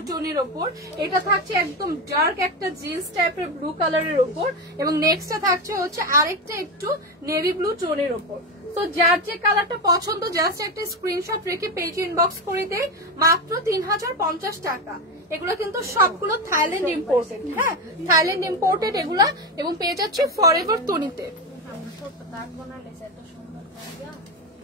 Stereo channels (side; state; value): both; normal; correlation 0.15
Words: টোনের ওপর, এটা থাকছে একদম ডার্ক একটা জিন্স টাইপের ব্লু কালারের ওপর, এবং নেক্সটটা থাকছে হচ্ছে আরেকটা একটু নেভি ব্লু টোনের ওপর। তো যার যে কালারটা পছন্দ জাস্ট একটা স্ক্রিনশট রেখে পেজে ইনবক্স করে দেয়, মাত্র 3050 টাকা। এগুলো কিন্তু সবগুলো থাইল্যান্ড ইম্পোর্টেড। হ্যাঁ, থাইল্যান্ড ইম্পোর্টেড এগুলা, এবং পেয়ে যাচ্ছে ফরএভার তনিতে।